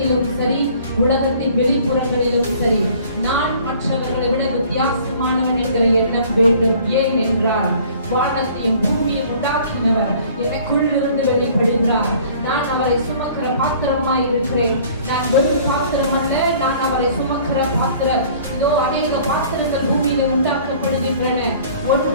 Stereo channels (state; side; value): inverted; both; correlation -0.52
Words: சரி, உலகத்தின் வெளிப்புறங்களிலும் சரி, நான் மற்றவர்களை விட வித்தியாசமானவன் என்கிற எண்ணம் வேண்டும். ஏன் என்றால் வானத்தையும் பூமியும் உண்டாக்கினவர் எனக்குள்ளிருந்து வெளிப்படுகிறார். நான் அவரை சுமக்கிற பாத்திரமாய் இருக்கிறேன். நான் வெறும் பாத்திரம் அல்ல, நான் அவரை சுமக்கிற பாத்திரம். இதோ அநேக பாத்திரங்கள் பூமியில உண்டாக்கப்படுகின்றன.